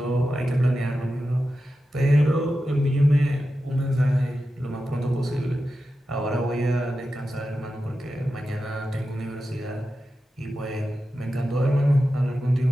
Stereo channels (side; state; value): both; normal; correlation 0.91